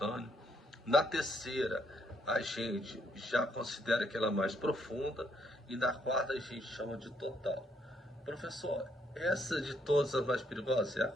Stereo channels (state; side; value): normal; both; correlation 0.72